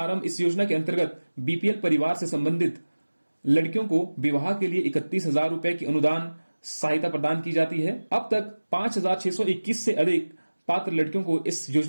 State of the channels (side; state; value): both; inverted; correlation -1.00